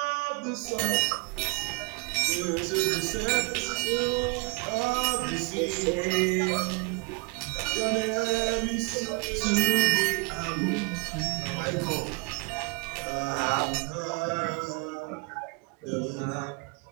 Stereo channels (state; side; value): quieter; left; 29.2 dB